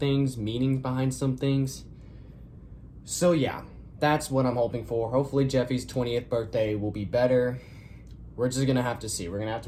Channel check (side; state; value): both; identical; correlation 1.00